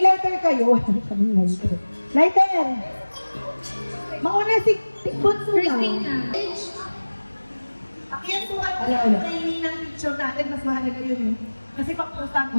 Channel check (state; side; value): inverted; both; correlation -1.00